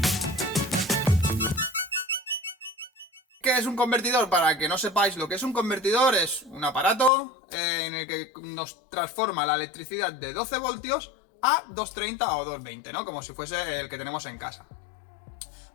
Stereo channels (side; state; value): right; drops out; at 7.1 s